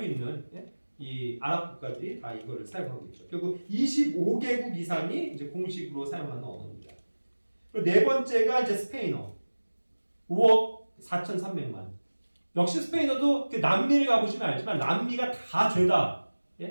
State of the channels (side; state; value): both; inverted; correlation -1.00